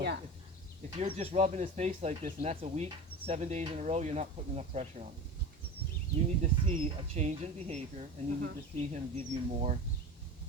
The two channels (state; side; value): normal; both; correlation 0.31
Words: yeah. if you're just rubbing his face like this and that's a week, 7 days in a row, you're not putting enough pressure on him. You need to see a change in behavior, and you need to see him give you more